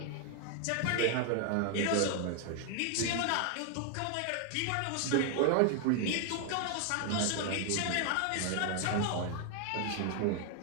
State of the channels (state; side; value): different; both; correlation 0.00